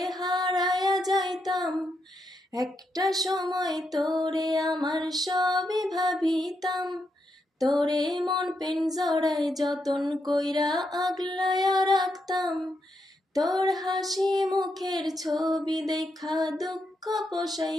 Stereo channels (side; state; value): both; normal; correlation 0.81